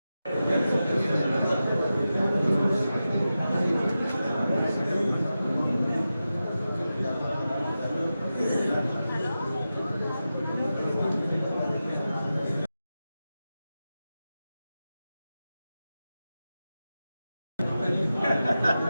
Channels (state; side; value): inverted; both; correlation -0.92